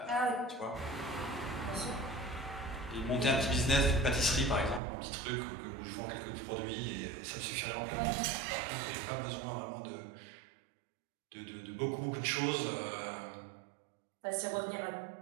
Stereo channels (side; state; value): left; drops out; at 4.8 s